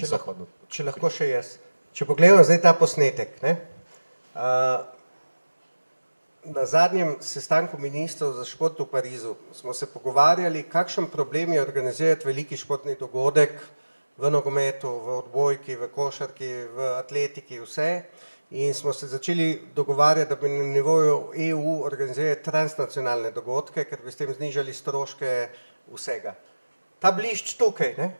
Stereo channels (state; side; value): inverted; both; correlation -1.00